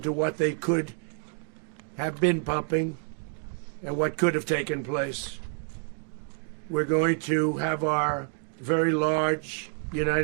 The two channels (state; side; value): silent; left; 56 dB below the other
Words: to what they could have been pumping and what could have taken place. We're going to have our very large